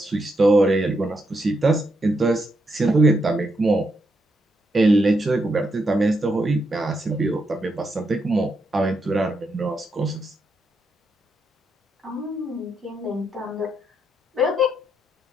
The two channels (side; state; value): both; normal; correlation 0.81